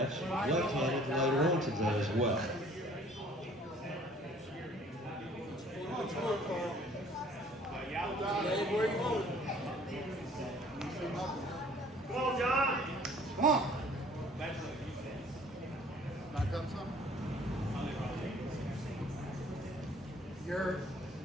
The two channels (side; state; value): both; normal; correlation 0.55